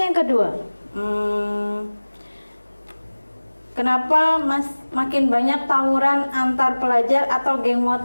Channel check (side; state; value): both; inverted; correlation -1.00